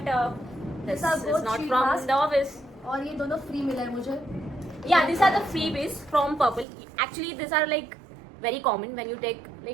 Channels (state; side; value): drops out; left; at 6.7 s